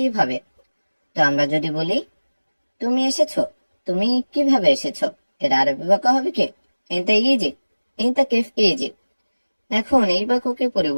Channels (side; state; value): both; inverted; correlation -1.00